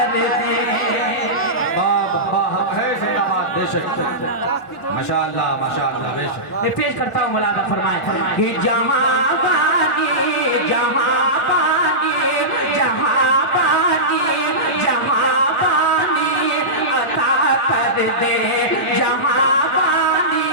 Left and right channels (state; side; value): normal; both; correlation -0.16